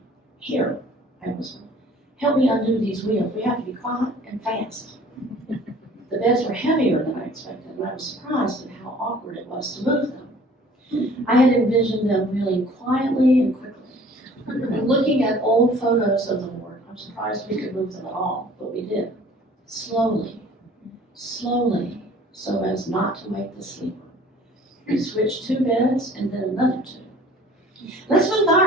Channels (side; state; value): both; normal; correlation 0.51